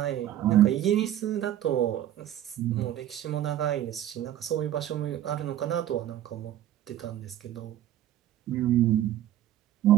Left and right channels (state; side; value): quieter; left; 12.1 dB